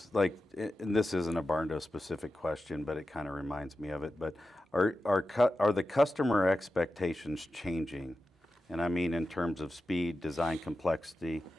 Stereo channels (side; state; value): both; normal; correlation 0.92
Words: and this isn't a barn door specific question, but it kind of reminds me of it. But are the customer expectations changing? And I mean in terms of speed, design complexity,